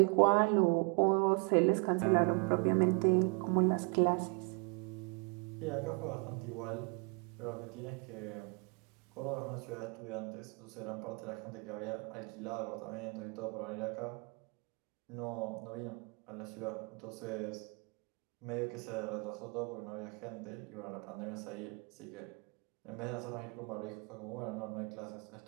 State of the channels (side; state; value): left; quieter; 33.5 dB